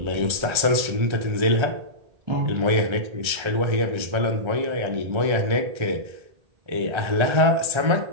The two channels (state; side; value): late; left; 1.3 ms